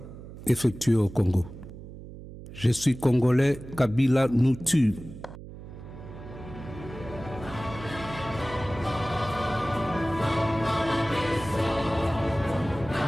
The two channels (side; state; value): right; noise; hum, 14 dB below the sound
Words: effectués au Congo. Je suis congolais, Kabila nous tue.